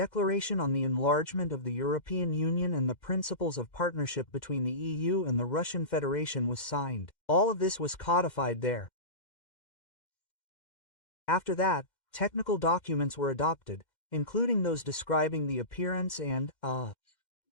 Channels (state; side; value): late; right; 2.1 ms